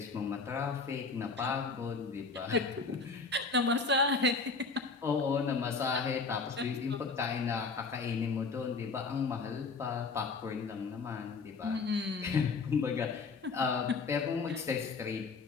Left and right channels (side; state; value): right; quieter; 4.4 dB